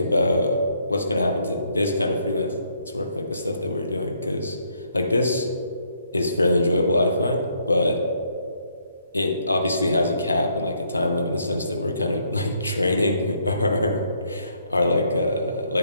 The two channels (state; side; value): inverted; both; correlation -0.70